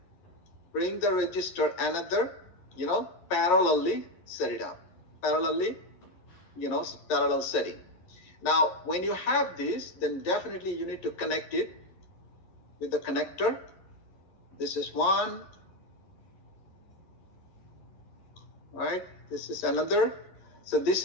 bring the resistor another, parallelly set it up, parallelly, parallel setting. Now, when you have this, then definitely you need to connect it with the connector. This is 1, right? This is another. So this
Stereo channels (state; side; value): late; right; 11 ms